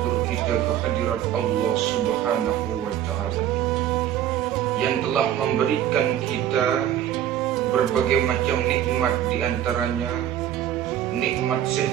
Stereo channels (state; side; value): quieter; left; 11.1 dB